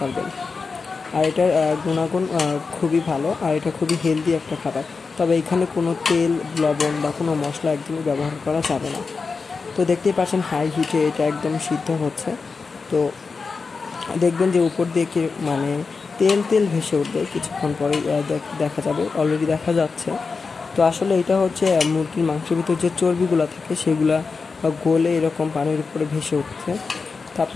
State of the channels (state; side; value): quieter; right; 4.6 dB